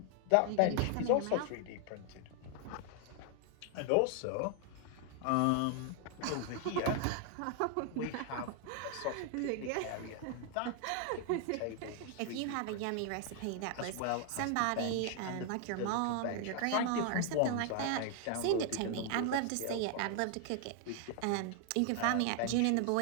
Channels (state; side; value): different; both; correlation 0.00